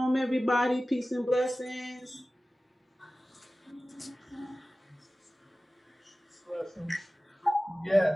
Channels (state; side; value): normal; both; correlation 0.96